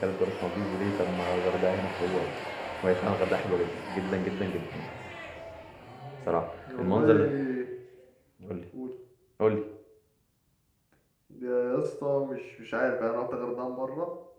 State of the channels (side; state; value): both; identical; correlation 1.00